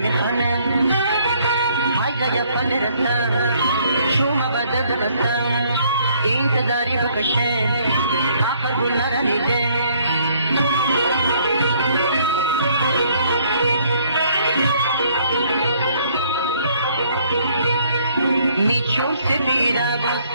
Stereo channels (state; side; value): inverted; both; correlation -0.64